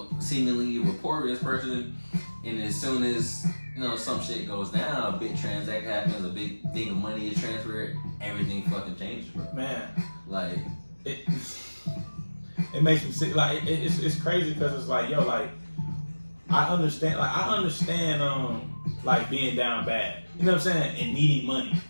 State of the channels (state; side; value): inverted; both; correlation -1.00